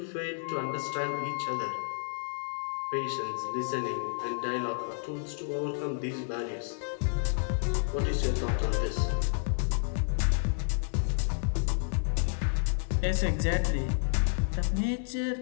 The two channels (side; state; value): right; silent; digital silence